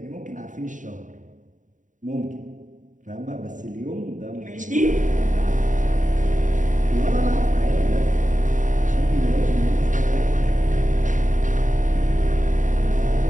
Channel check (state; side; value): late; left; 0.37 ms